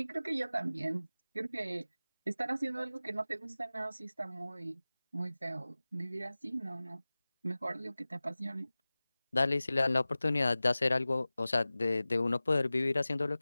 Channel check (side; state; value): both; inverted; correlation -0.97